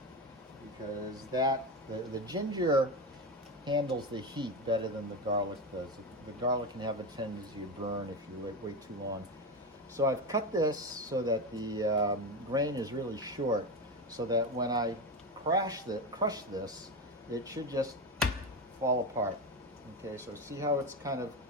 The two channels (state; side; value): normal; both; correlation 0.18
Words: because the ginger handles the heat better than the garlic does. The garlic can have a tendency to burn if you wait too long. So I've cut this so that the grain is really short, so that when I crush this, it should just fall apart. Okay, so see how it's kind of